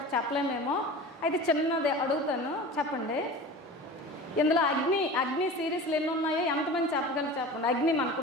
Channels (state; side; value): normal; both; correlation 0.36